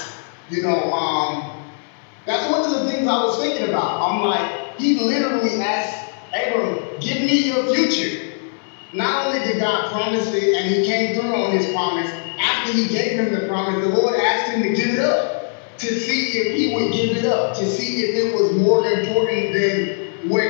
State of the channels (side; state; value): right; silent; digital silence